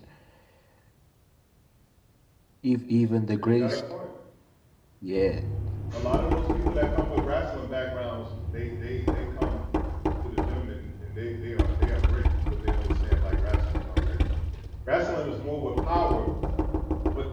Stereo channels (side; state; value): both; identical; correlation 1.00